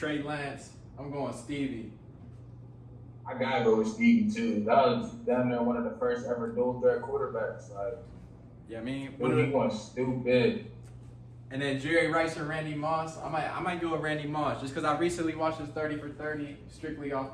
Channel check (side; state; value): both; identical; correlation 1.00